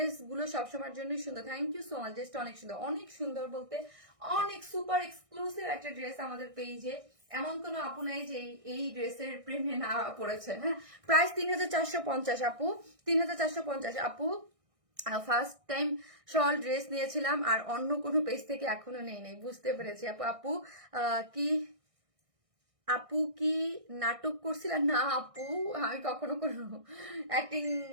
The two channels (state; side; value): late; left; 1.6 ms